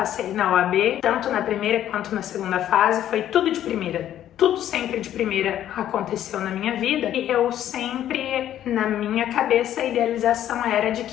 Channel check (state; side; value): quieter; right; 11.5 dB